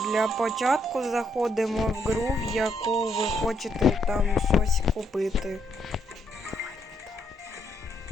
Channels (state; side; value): normal; both; correlation 0.74